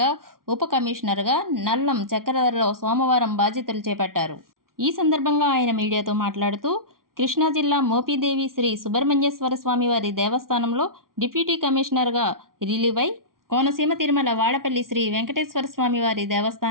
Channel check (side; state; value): left; late; 0.92 ms